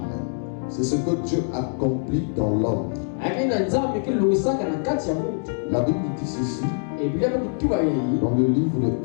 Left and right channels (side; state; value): right; silent; digital silence